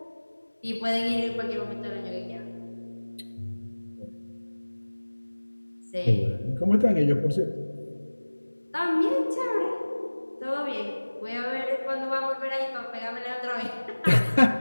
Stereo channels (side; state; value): both; inverted; correlation -1.00